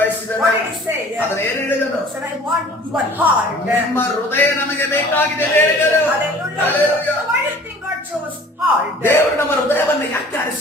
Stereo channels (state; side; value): normal; both; correlation 0.48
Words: What did he say? ಅದನ್ನ ಏನ್ ಹೇಳಿದನು? He said, I want your heart. ನಿಮ್ಮ ಹೃದಯ ನಮಗೆ ಬೇಕಾಗಿದೆ ಎಂದು ಹೇಳಿದನು. Hallelujah. Hallelujah. So why do you think God chose heart? ದೇವರು ನಮ್ಮ ಹೃದಯವನ್ನ ಯಾಕೆ